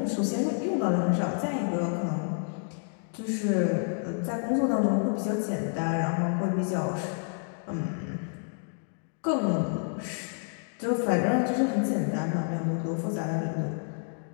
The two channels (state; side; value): silent; right; 59 dB below the other